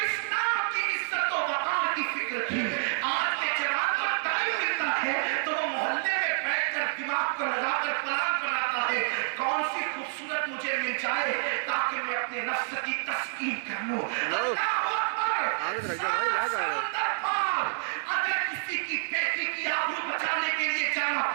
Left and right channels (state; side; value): silent; left; 59 dB below the other